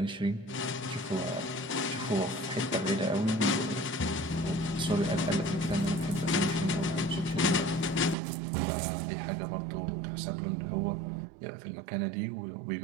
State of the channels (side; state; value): left; drops out; at 8.2 s